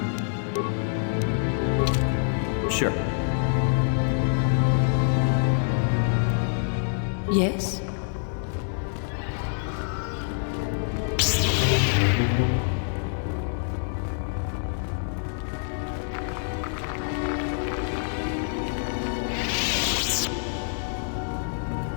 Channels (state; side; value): silent; right; digital silence